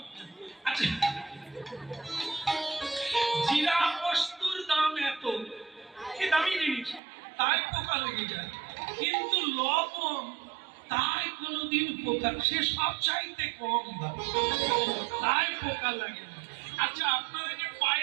আচ্ছা, জিরা বস্তুর দাম এত, কি দামি জিনিস, তাই পোকা লেগে যায়, কিন্তু লবণ তাই কোনোদিন পোকা, সে সব চাইতে কম দাম, তাই পোকা লাগে না। আচ্ছা, আপনারা যে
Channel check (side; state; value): left; drops out; at 7.0 s